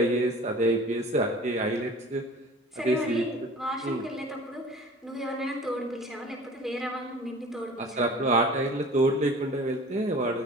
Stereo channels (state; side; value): normal; both; correlation 0.43